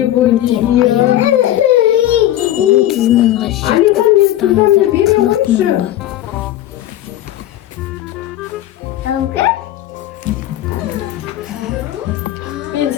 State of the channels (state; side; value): quieter; right; 13.4 dB